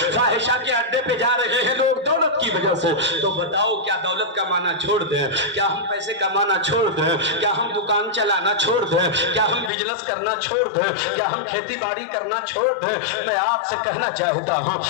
فاحشہ کے اڈے پہ جا رہے ہیں لوگ دولت کی وجہ سے، تو بتاؤ کیا دولت کمانا چھوڑ دیں؟ کیا ہم پیسے کمانا چھوڑ دیں؟ کیا ہم دکان چلانا چھوڑ دیں؟ کیا ہم بزنس کرنا چھوڑ دیں؟ کیا ہم کھیتی باڑی کرنا چھوڑ دیں؟ میں آپ سے کہنا چاہتا ہوں،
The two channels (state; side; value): drops out; right; at 9.7 s